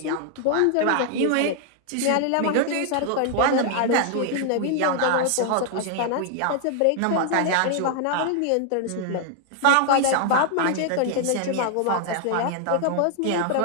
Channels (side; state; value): both; different; correlation 0.00